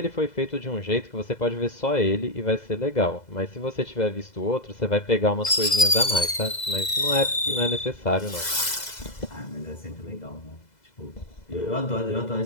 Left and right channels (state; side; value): late; right; 2.0 ms